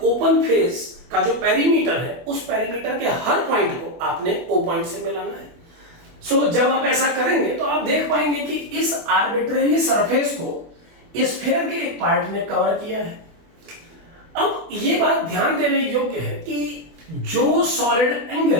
ओपन फेस का जो पेरीमीटर है उस पेरीमीटर के हर पॉइंट को आपने O पॉइंट से मिलाना है। सो जब आप ऐसा करेंगे तो आप देख पाएंगे कि इस आर्बिट्रेरी सरफेस को स्फीयर के एक पार्ट ने कवर किया है। अब ये बात ध्यान देने योग्य है कि जो सॉलिड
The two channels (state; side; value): late; left; 24 ms